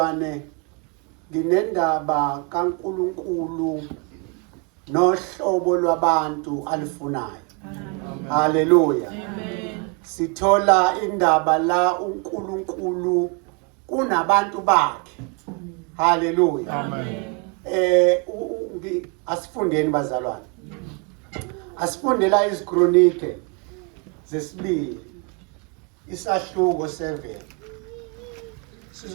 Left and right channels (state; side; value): quieter; left; 34.4 dB